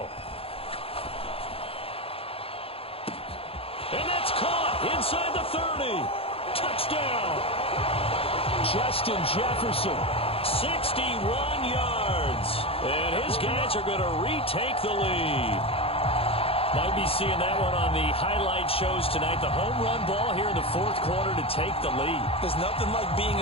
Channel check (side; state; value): right; late; 0.27 ms